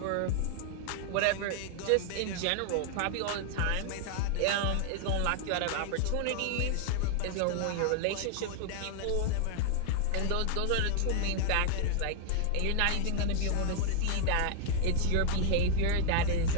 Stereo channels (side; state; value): both; different; correlation 0.00